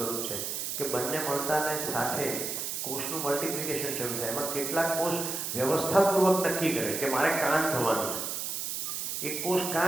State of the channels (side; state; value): right; noise; hiss, 3 dB below the sound